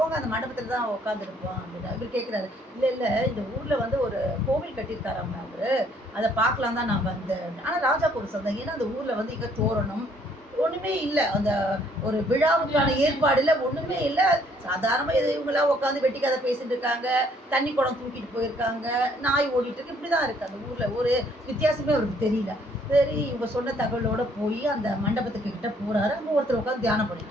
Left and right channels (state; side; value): normal; both; correlation 0.64